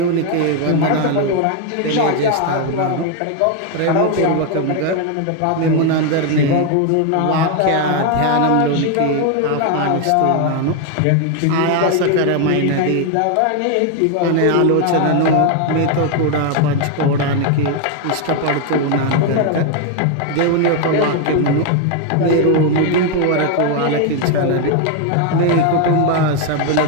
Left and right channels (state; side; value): different; both; correlation 0.01